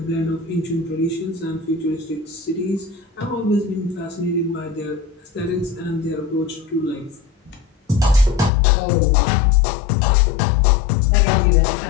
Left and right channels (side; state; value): right; drops out; at 8.5 s